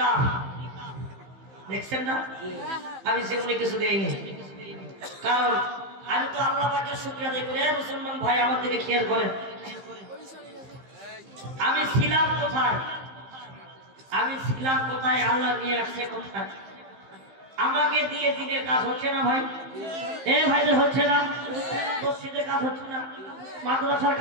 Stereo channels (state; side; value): late; left; 15 ms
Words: দেখছেন না আমি সেগুলো কিছু দেইনি কারণ আমি তো আল্লাহ পাকের শুকরিয়া আদায় করি মুসলমান ভাই আমার দিকে খেয়াল করেন আমি ছিলাম কোথায় আল্লাহ নিয়ে আসছে কোথায় আমাকে দিয়ে দিনের কাজ হচ্ছে না ভাই এ ভাইদের হচ্ছে না মসজিদের কাজ হচ্ছে না মাদ্রাসার